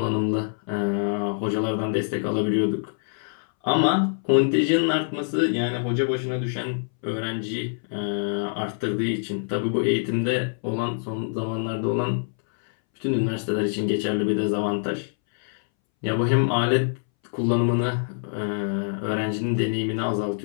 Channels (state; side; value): silent; right; 62 dB below the other